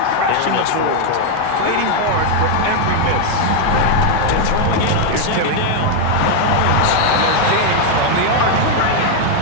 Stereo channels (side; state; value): both; different; correlation 0.01